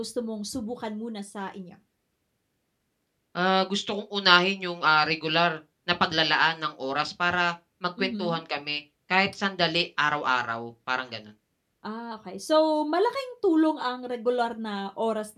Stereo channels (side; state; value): both; identical; correlation 1.00